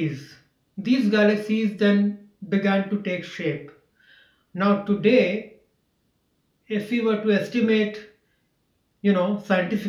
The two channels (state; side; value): identical; both; correlation 1.00